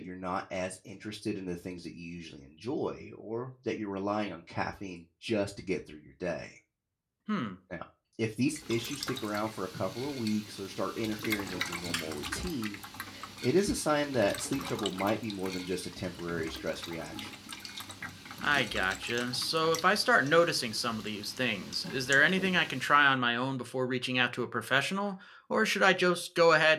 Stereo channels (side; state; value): both; identical; correlation 1.00